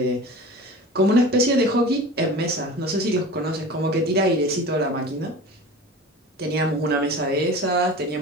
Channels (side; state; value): both; normal; correlation 0.36